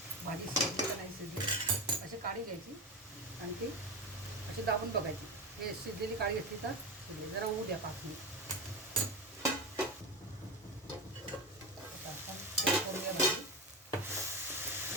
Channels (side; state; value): both; normal; correlation 0.21